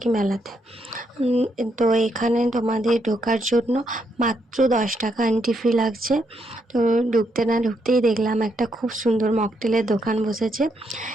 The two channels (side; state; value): both; normal; correlation 0.77